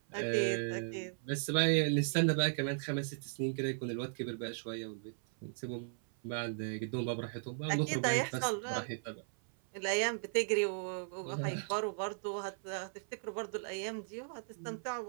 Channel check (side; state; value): left; silent; 53 dB below the other